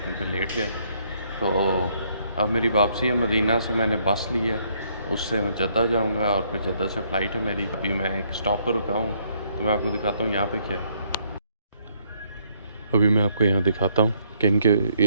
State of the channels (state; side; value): inverted; both; correlation -0.69